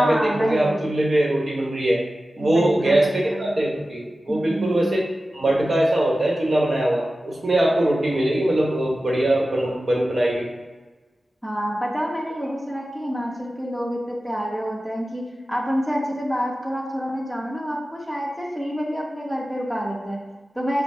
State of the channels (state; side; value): normal; both; correlation 0.95